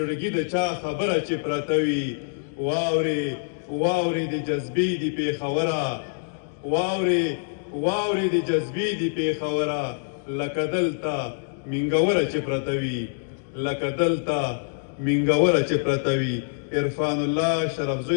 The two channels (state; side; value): silent; right; digital silence